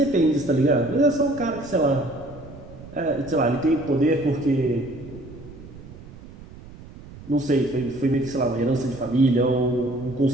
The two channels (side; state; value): right; noise; rumble, 17 dB below the sound